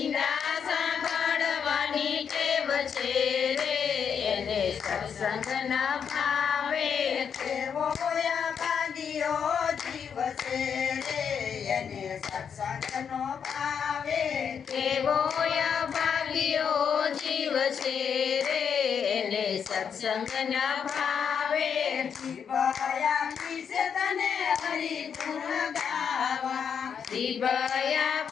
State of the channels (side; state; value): right; quieter; 7.2 dB